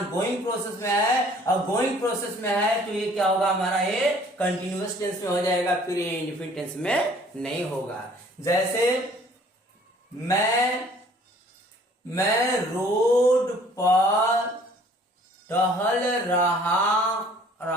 प्रोसेस में है, और गोइंग प्रोसेस में है तो ये क्या होगा? हमारा ये कंटिन्यूअस टेंस में हो जाएगा, फिर ये इंडेफिनिट टेंस में नहीं होगा। जैसे मैं रोड पर टहल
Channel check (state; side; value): normal; both; correlation 0.55